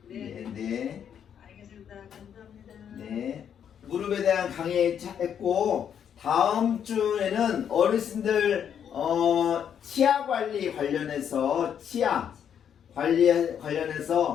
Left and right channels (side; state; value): right; quieter; 8.5 dB